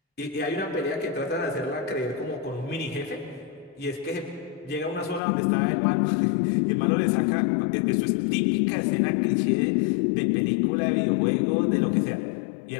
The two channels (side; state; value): right; drops out; at 5.2 s